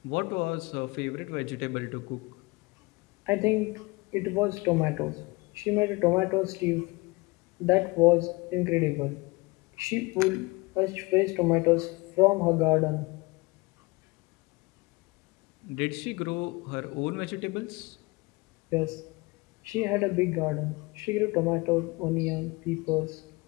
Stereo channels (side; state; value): right; quieter; 24.6 dB